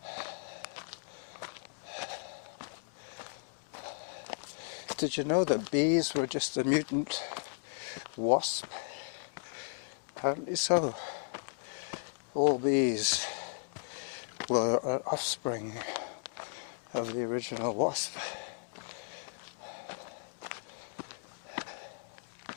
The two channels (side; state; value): right; silent; digital silence